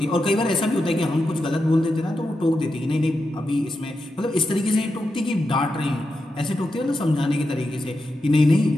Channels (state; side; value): normal; both; correlation 0.88